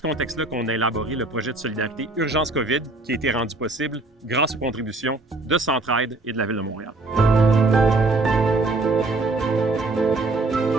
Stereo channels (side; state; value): left; quieter; 3.0 dB